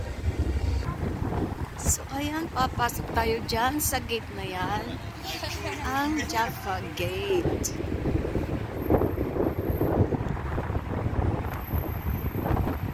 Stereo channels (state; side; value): identical; both; correlation 1.00